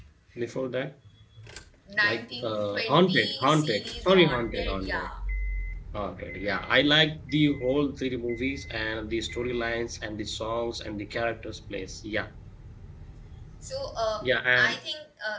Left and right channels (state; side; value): identical; both; correlation 1.00